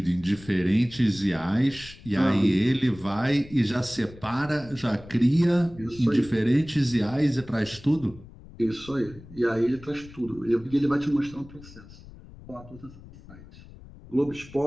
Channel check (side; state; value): left; noise; rumble, 19 dB below the sound